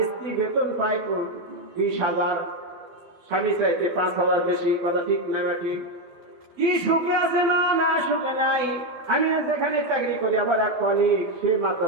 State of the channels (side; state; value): left; late; 12 ms